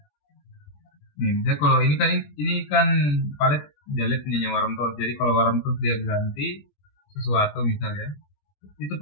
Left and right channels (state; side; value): late; right; 20 ms